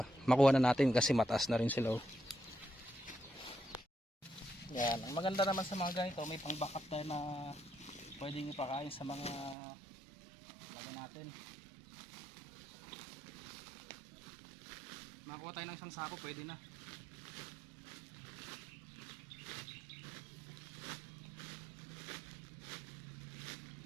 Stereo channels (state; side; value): drops out; left; at 9.6 s